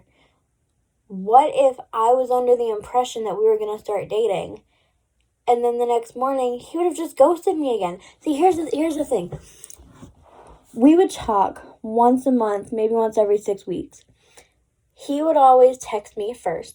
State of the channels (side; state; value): both; identical; correlation 1.00